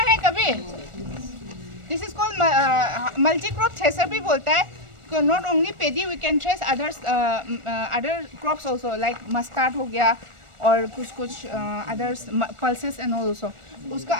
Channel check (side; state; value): left; late; 1.4 ms